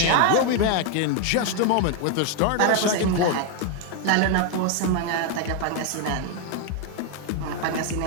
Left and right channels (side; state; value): both; different; correlation 0.01